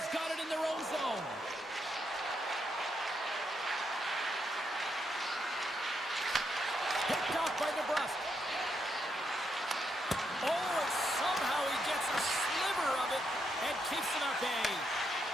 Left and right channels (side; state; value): both; normal; correlation 0.80